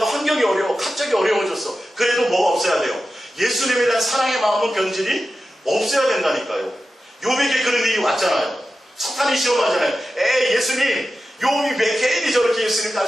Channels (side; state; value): both; normal; correlation 0.93